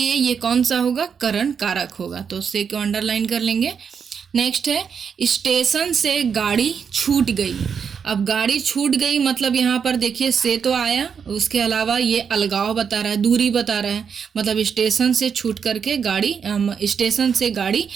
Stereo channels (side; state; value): left; quieter; 6.7 dB